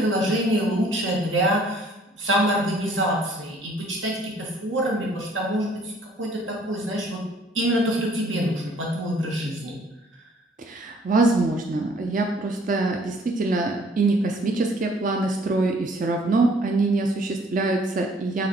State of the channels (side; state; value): both; normal; correlation 0.59